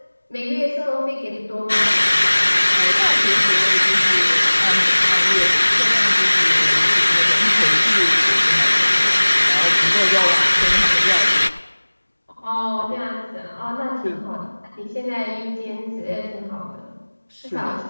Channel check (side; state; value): both; inverted; correlation -1.00